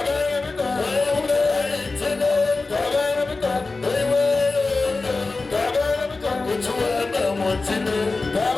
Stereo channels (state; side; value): quieter; right; 3.7 dB